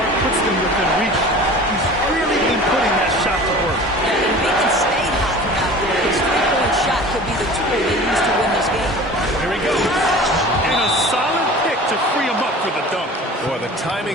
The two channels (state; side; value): normal; both; correlation 0.41